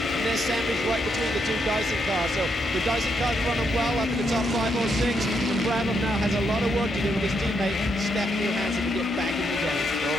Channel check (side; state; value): both; normal; correlation 0.79